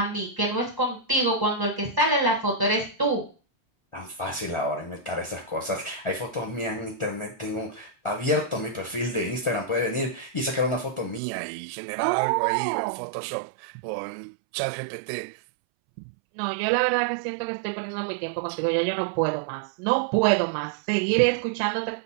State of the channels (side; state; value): left; drops out; at 11.2 s